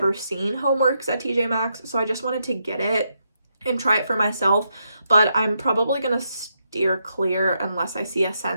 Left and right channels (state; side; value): inverted; both; correlation -0.81